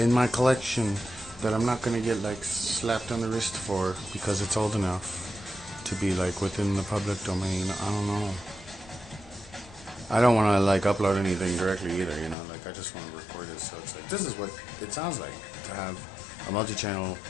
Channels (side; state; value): right; drops out; at 12.4 s